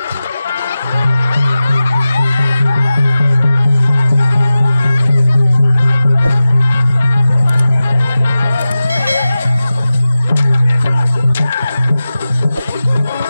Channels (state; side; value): inverted; both; correlation -0.94